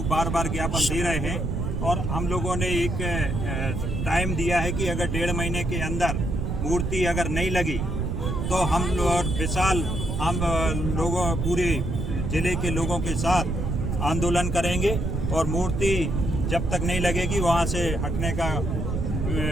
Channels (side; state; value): right; noise; rumble, 1 dB below the sound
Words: बार बार ज्ञापन दे रहे हैं और हम लोगों ने एक टाइम दिया है कि अगर 1.5 महीने के अंदर मूर्ति अगर नहीं लगी तो हम लोगों पूरे जिले के लोगों के साथ आंदोलन करेंगे और मूर्ति जब तक नहीं लगेगी वहाँ से हटने का